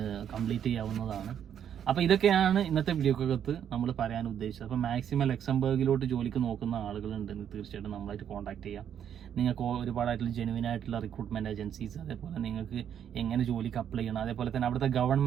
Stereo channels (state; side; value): quieter; left; 9.1 dB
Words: കംപ്ലീറ്റ് ചെയ്യാവുന്നതാണ്. അപ്പോൾ ഇതൊക്കെയാണ് ഇന്നത്തെ വീഡിയോക്കകത്ത് നമ്മൾ പറയാൻ ഉദ്ദേശിച്ചത്. അപ്പോൾ മാക്സിമം ലക്സംബർഗിലോട്ട് ജോലിക്ക് നോക്കുന്ന ആളുകളുണ്ടെങ്കിൽ തീർച്ചയായിട്ടും നമ്മളായിട്ട് കോൺടാക്ട് ചെയ്യാം. നിങ്ങൾക്ക് ഒരുപാടായിട്ടുള്ള ജെനുവിൻ ആയിട്ടുള്ള റിക്രൂട്ട്മെൻറ്റ് ഏജൻസീസ്, അതേപോലെ നിങ്ങൾക്ക് എങ്ങനെ ജോലിക്ക് അപ്ലൈ ചെയ്യണം, അതേപോലെ തന്നെ അവിടുത്തെ